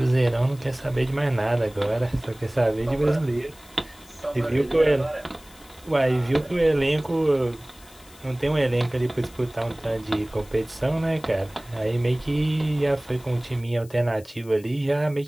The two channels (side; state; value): left; noise; hiss, 24 dB below the sound